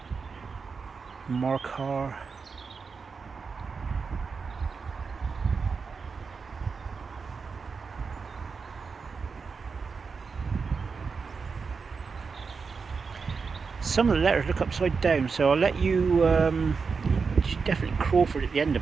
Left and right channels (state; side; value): quieter; left; 5.1 dB